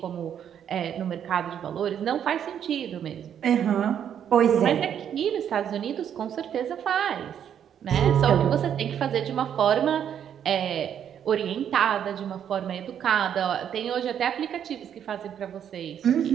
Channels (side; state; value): left; quieter; 9.1 dB